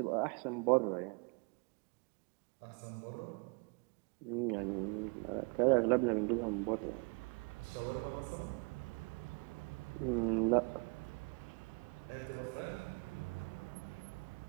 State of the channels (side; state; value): left; quieter; 32.2 dB